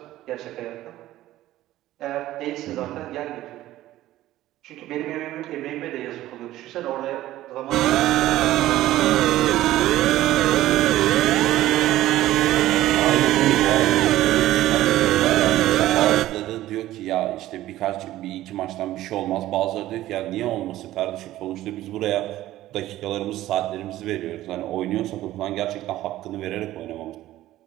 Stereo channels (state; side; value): quieter; left; 14.9 dB